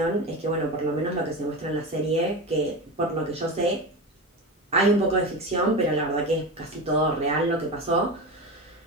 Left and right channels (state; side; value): normal; both; correlation 0.23